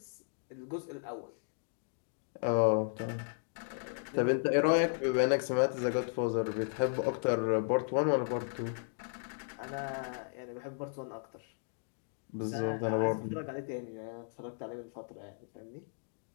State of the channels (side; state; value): right; silent; digital silence